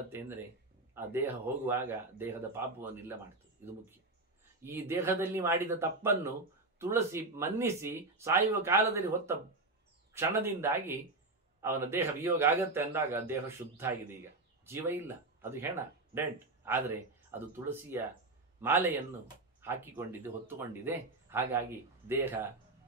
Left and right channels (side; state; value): left; quieter; 3.1 dB